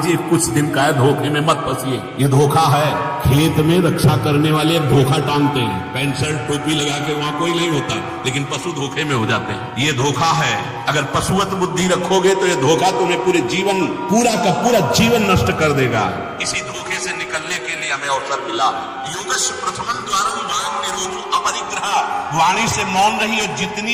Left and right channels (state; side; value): identical; both; correlation 1.00